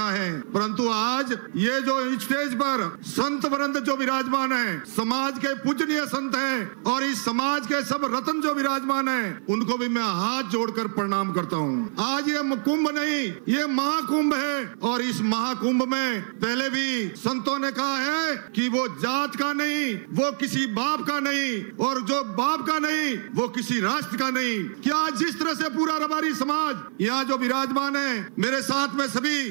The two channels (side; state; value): left; silent; 55 dB below the other